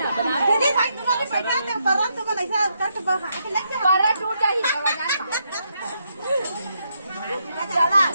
दीदी भाई तुम्हारे पैसा तो परम तो ऐसा कट बहा के लग जा पर टूट जाही चला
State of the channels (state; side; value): inverted; both; correlation -0.79